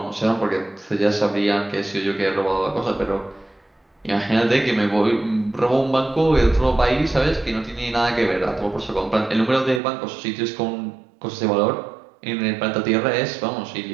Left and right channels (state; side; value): drops out; left; at 9.8 s